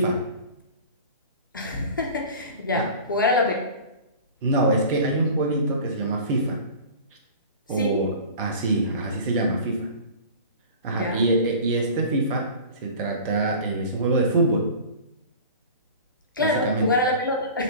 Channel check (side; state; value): both; inverted; correlation -0.39